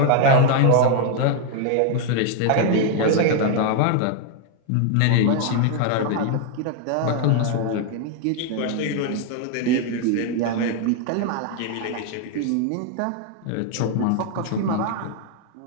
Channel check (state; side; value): different; both; correlation 0.00